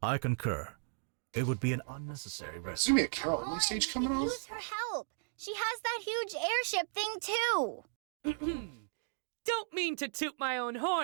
I concur. It would be an unnecessary There's risk. gonna be a Carol Only on, stage we coming could off? use her help. She has that huge airship thing too. Don't mean to toot my own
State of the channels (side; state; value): left; silent; digital silence